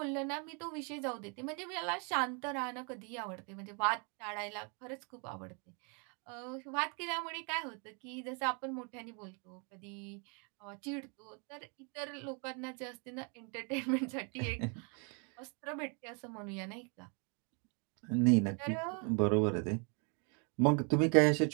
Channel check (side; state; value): left; quieter; 36.0 dB